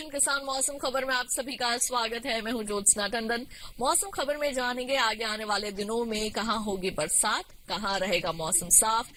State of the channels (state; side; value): identical; both; correlation 1.00